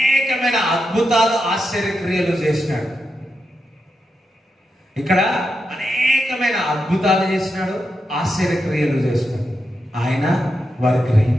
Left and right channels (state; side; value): normal; both; correlation 0.86